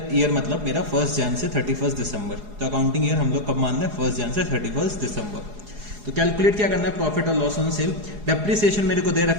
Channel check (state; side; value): late; left; 4.8 ms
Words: ईयर मतलब मेरा 1 जनवरी से 31 दिसंबर। तो अकाउंटिंग ईयर हम लोग कब मान रहे हैं, 1 जनवरी से 31 दिसंबर। तो कैलकुलेट क्या करना है, प्रॉफिट और लॉस ऑन सेल। डेप्रिसिएशन मेरे को दे